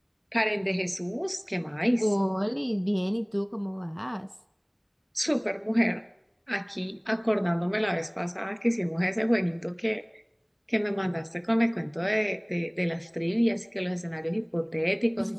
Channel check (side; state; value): both; identical; correlation 1.00